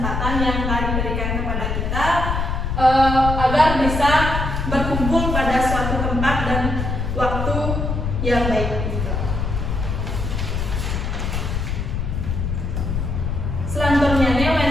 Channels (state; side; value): noise; left; rumble, 1 dB below the sound